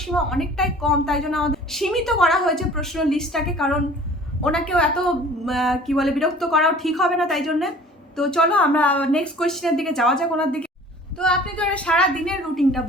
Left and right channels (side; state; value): both; normal; correlation 0.48